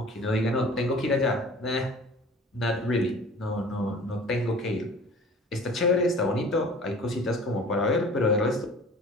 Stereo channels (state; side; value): normal; both; correlation 0.45